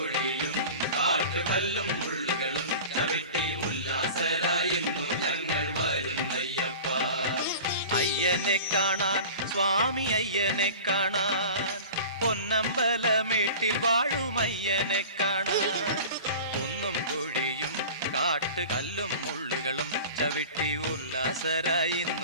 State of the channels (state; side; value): inverted; both; correlation -0.36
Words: കാട്ടുകല്ലും മുള്ളുകളും ചവിട്ടി ഉല്ലാസരായിരുന്നു ഞങ്ങൾ വരുന്നയ്യപ്പ. അയ്യനെ കാണാൻ സ്വാമി അയ്യനെ കാണാൻ പൊന്നമ്പലമേട്ടിൽ വാഴും അയ്യനെ കാണാൻ. കുന്നും കുഴിയും കാട്ടുകല്ലും മുള്ളുകളും ചവിട്ടി ഉല്ലാസരായി